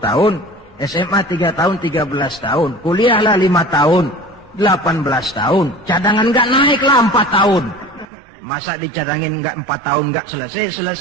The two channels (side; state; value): left; drops out; at 8.1 s